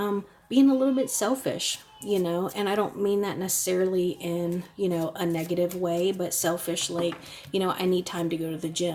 being a little bit selfish, you know, and I don't mean that necessarily in, you know, a negative way, but selfish, like, you know, I need time to go to the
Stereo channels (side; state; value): both; identical; correlation 1.00